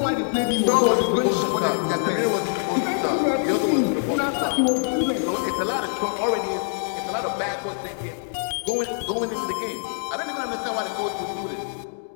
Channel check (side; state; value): right; silent; digital silence